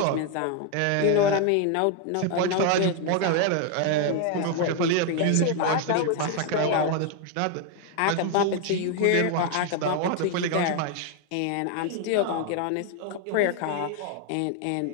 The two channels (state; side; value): different; both; correlation 0.01